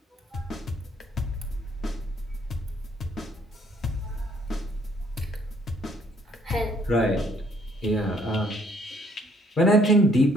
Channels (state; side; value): normal; both; correlation 0.64